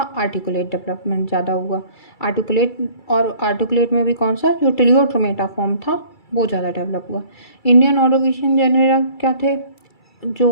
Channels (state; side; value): late; right; 2.3 ms